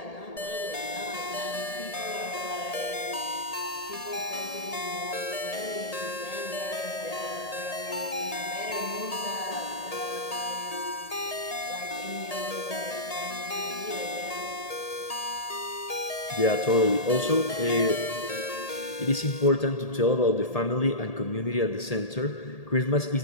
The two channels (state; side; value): late; right; 1.8 ms